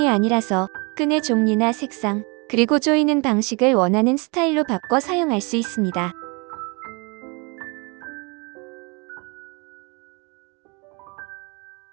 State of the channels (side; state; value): left; quieter; 30.6 dB